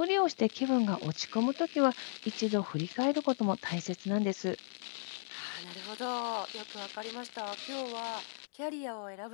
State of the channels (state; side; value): silent; right; digital silence